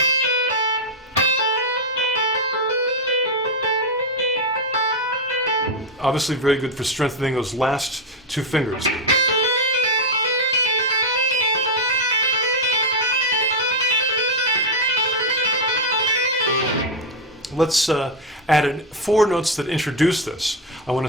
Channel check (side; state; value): both; normal; correlation 0.05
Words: Obviously very good for strengthening those last 2 fingers. Let's add in 4 notes that introduce this. I want